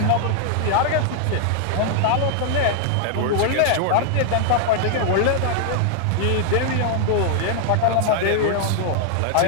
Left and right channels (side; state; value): both; different; correlation 0.00